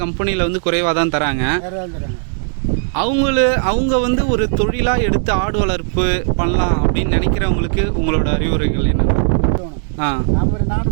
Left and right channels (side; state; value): left; silent; 67 dB below the other